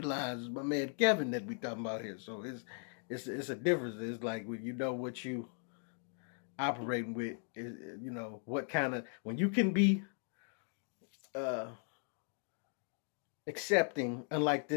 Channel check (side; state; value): right; silent; 52 dB below the other